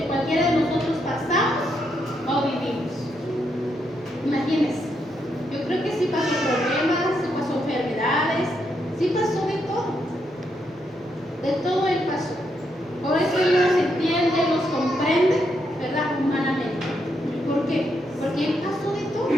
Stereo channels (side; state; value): both; normal; correlation 0.79